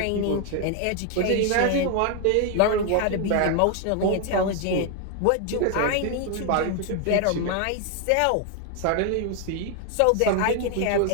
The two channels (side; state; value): both; different; correlation 0.00